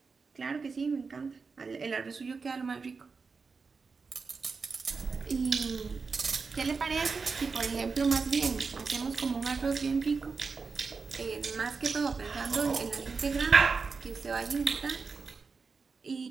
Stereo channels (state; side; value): quieter; left; 4.8 dB